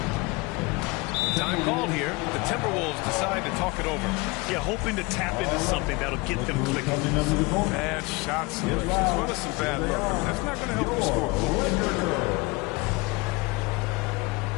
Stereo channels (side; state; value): right; quieter; 25.4 dB